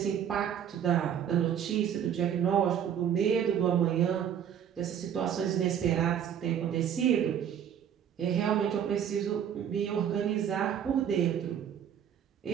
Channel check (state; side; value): quieter; left; 9.0 dB